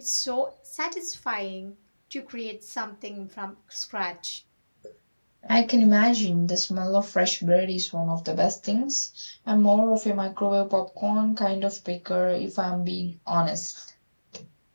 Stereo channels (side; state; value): both; inverted; correlation -1.00